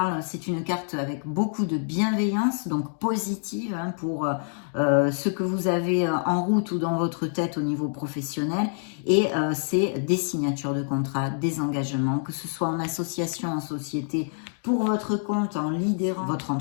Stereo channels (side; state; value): right; silent; 59 dB below the other